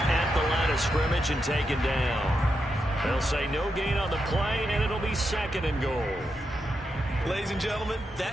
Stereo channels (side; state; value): both; normal; correlation 0.85